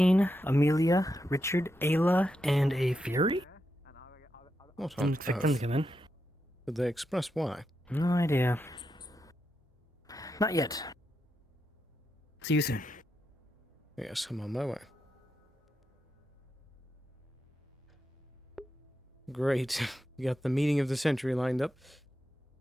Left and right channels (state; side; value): normal; both; correlation 0.85